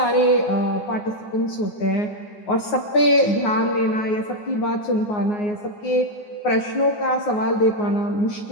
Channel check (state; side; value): late; right; 9.5 ms